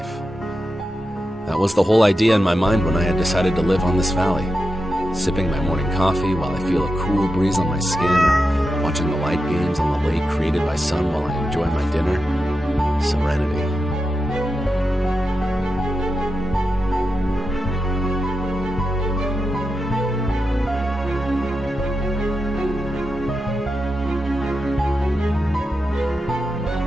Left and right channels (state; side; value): normal; both; correlation 0.88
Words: That was the whole idea in my mind when I had decided to live on this valley. Sipping my morning coffee while I feel a cool breeze on my skin, or watching the light games on the lake created by sun while I enjoy my dinner. Serenity.